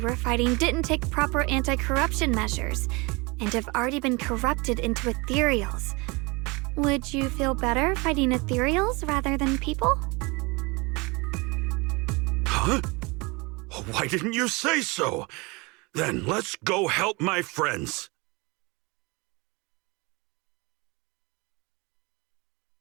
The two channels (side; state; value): left; quieter; 26.5 dB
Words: were fighting didn't take proper anti-corruption measures and have already been corrupted into ethereals. Would you feel better fighting ethereals rather than people? Huh? Why didn't you say so? Then let's go help my friends.